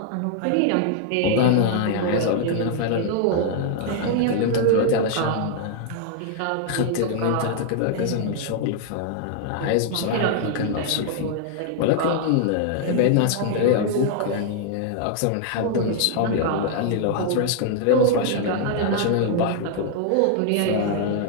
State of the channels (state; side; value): different; both; correlation -0.01